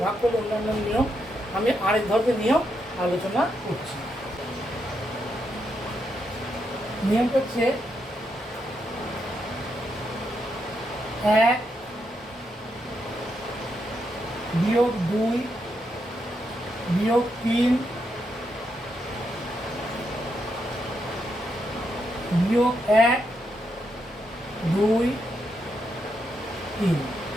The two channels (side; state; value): both; normal; correlation 0.81